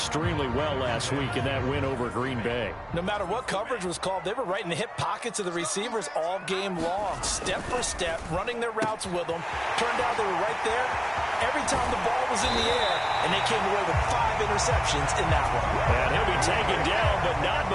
well last week in that win over Green Bay. No matter what coverage was called, they were right in the hip pockets of the receivers all game long, step for step, running their routes with them. Turned out they were right there every time the ball was in the air, and they came away with 5 interceptions in that one. And he'll be taken down, but not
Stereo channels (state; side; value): identical; both; correlation 1.00